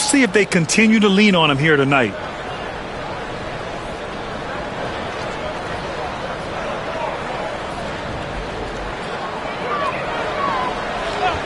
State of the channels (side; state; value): both; identical; correlation 1.00